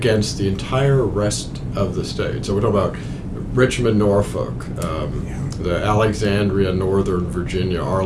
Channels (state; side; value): identical; both; correlation 1.00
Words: the entire rest of the state. So we're talking about Richmond, Norfolk, the Alexandria, Northern Virginia,